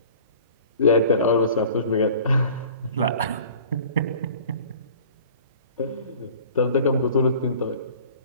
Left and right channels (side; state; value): both; inverted; correlation -0.46